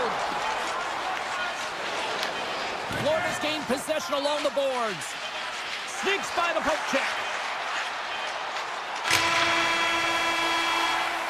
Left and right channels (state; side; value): identical; both; correlation 1.00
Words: Florida's gained possession along the boards. Sneaks by the poke check.